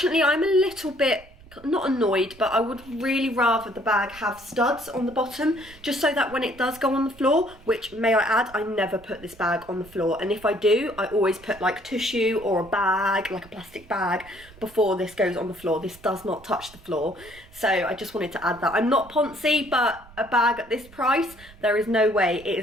I'm a little bit not annoyed, but I would really rather the bag have studs on the bottom, just so that when it does go on the floor, which, may I add, I never put this bag on the floor, and if I do, I always put like tissue or a bag, like a plastic bag, before this goes on the floor. This does not touch the floor, so I just wanted to add that. I'm not poncy, but a bag at this price, there is no way it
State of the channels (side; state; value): right; noise; rumble, 23 dB below the sound